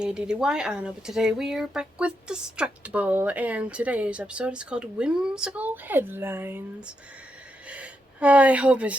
I don't know, but today we are back with Distractible, and today's episode is called Whimsical Headlines. I hope it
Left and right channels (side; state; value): both; normal; correlation 0.82